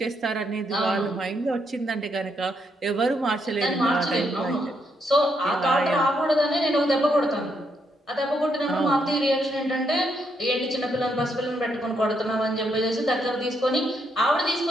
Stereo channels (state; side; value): normal; both; correlation 0.77